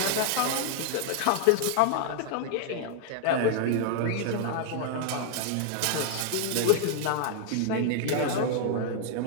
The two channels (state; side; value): different; both; correlation 0.00